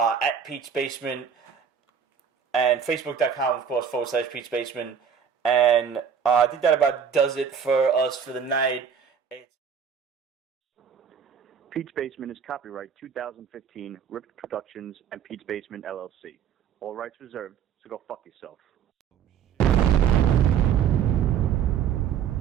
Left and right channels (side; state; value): left; quieter; 7.6 dB